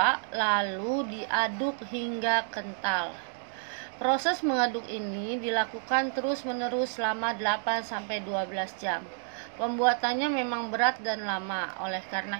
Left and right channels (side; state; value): left; silent; 58 dB below the other